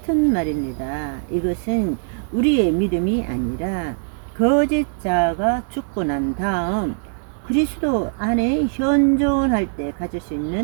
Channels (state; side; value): silent; left; 65 dB below the other